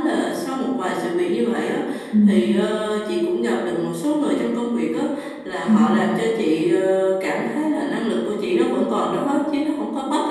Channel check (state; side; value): identical; both; correlation 1.00